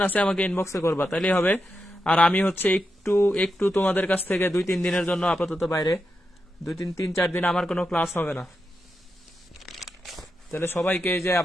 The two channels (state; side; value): normal; both; correlation 0.87